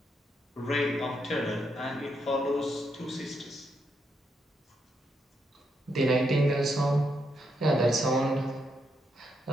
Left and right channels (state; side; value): normal; both; correlation 0.79